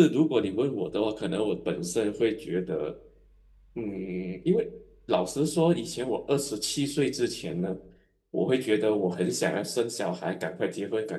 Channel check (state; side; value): identical; both; correlation 1.00